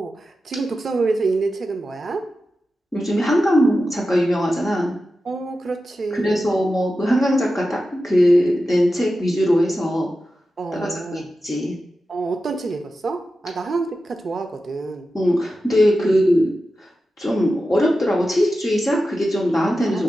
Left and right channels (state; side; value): normal; both; correlation 0.92